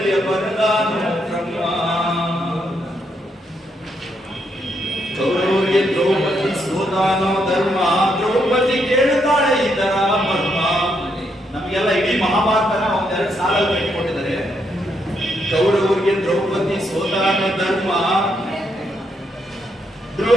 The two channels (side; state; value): both; normal; correlation 0.77